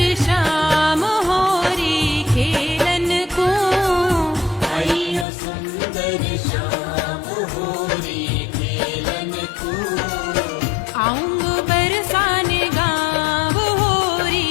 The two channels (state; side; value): drops out; right; at 5.2 s